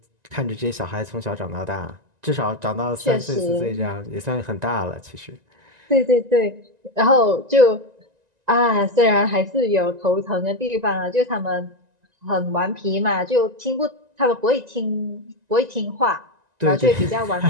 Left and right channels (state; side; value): late; left; 1.9 ms